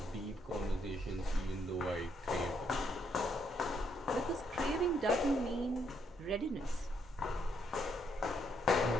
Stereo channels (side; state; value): both; normal; correlation 0.73